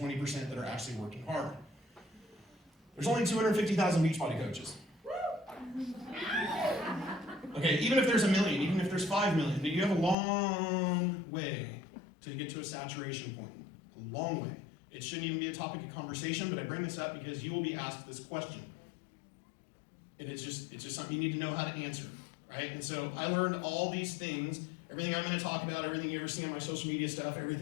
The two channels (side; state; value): right; drops out; at 10.2 s